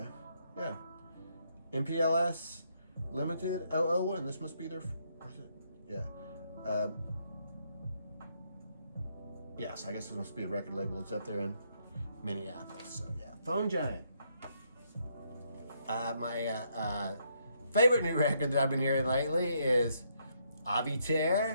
yeah. MPLS Limited 001. This must be their. Yeah. Yes, I guess this must be a record label. It's up there in Minneapolis. So, yeah. Foam Giant. My favorite new record that I've been hearing lately is Avey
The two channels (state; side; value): inverted; both; correlation -0.74